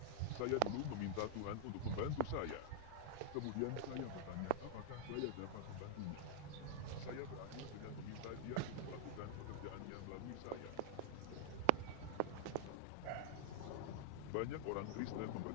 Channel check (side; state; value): both; different; correlation -0.01